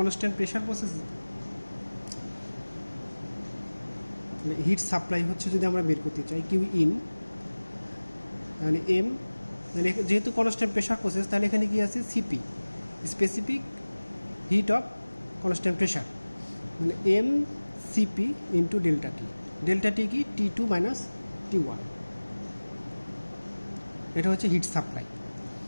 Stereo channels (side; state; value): both; inverted; correlation -1.00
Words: pressure process heat supply হচ্ছে যদি আমরা বের করতে চাই কিউ ইন, তাহলে এম, তাহলে যেহেতু কনস্ট্যান্ট প্রেশার প্রসেস তাহলে এখানে কি আছে? CP, specific heat of constant pressure, মানে এম সিপি ইন্টু ডেল্টা টি। ডেল্টা টি কি? T2 minus T1। এটা হচ্ছে হিট সাপ্লাই।